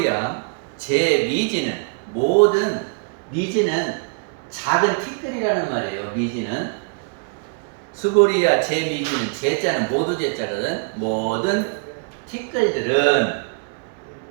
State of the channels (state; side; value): quieter; left; 37.8 dB